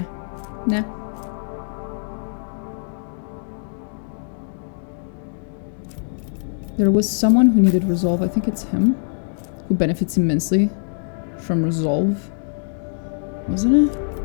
Nah. There was someone who needed resolve. I think it's him. Who benefits immensely from resolve. Wasn't it?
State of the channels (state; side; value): silent; right; digital silence